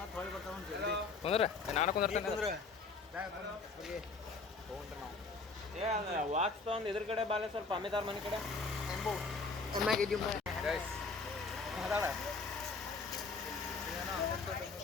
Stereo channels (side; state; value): right; quieter; 4.2 dB